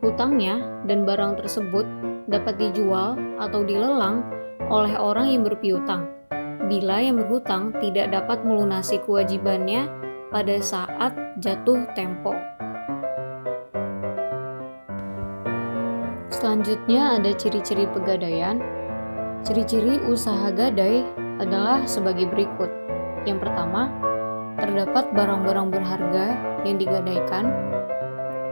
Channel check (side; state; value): both; inverted; correlation -1.00